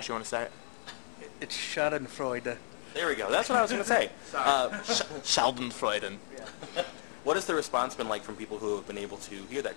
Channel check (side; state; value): right; silent; 56 dB below the other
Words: you want to say it? It's Schadenfreude. There we go. That's what I was going to say. Schadenfreude. Yeah. What has the response been like from people who have been able to hear that?